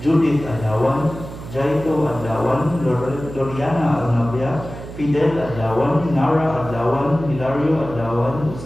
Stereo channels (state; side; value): noise; right; hum, 12 dB below the sound